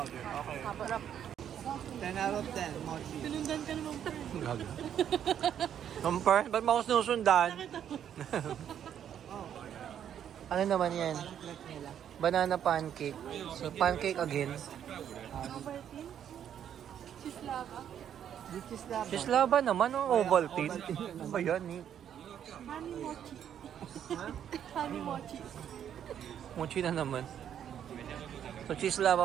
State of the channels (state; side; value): quieter; left; 9.5 dB